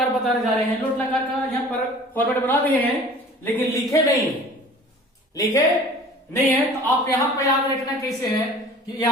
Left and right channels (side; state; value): both; normal; correlation 0.45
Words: बताने जा रहे हैं। लोट लकार का यहाँ पर फॉर्मेट बना दिए हैं, लेकिन लिखे नहीं है, लिखे नहीं है। तो आप यहाँ पर याद रखना कैसे है कि